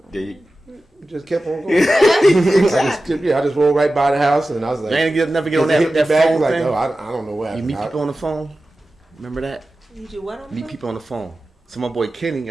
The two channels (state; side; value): normal; both; correlation 0.94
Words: There you- just kept on going. I just rolled right by the house, and I was like, You ain't never get on hit me that back, phone like, thing. oh, I don't know what You happened. meet people on the phone. Remember that? You do what on Meet the people on the phone. So my boy Kenny